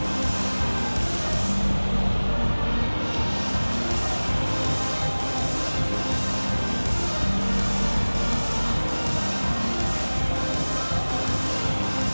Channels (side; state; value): both; inverted; correlation -1.00